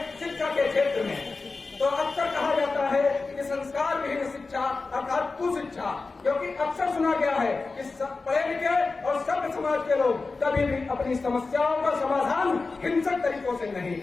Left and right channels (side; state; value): right; quieter; 3.9 dB